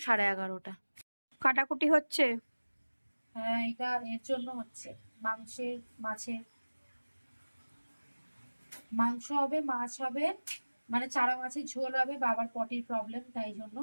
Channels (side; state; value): both; inverted; correlation -1.00